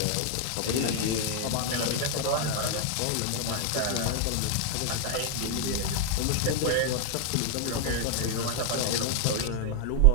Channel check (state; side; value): different; both; correlation 0.00